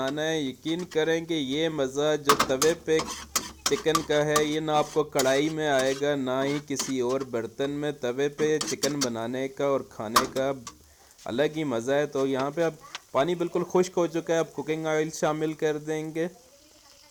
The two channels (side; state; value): both; identical; correlation 1.00